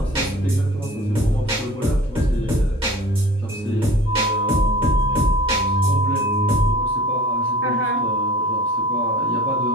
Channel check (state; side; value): normal; both; correlation 0.42